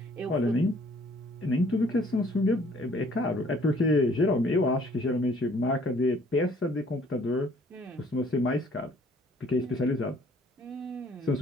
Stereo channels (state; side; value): normal; both; correlation 0.59